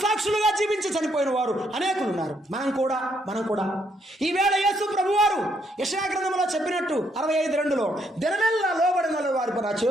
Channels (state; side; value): normal; both; correlation 0.73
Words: జీవించి చనిపోయిన వారు అనేకులు ఉన్నారు. మనం కూడా ఈవేళ యేసు ప్రభువారు యెషయా గ్రంథంలో చెప్పినట్టు 65:2 దినమెల్లా లోబడిన వారి నా